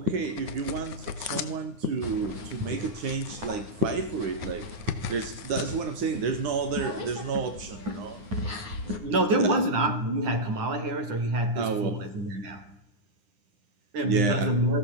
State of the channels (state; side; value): late; left; 9.8 ms